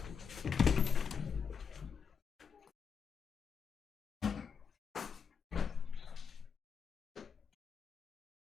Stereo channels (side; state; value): right; quieter; 6.4 dB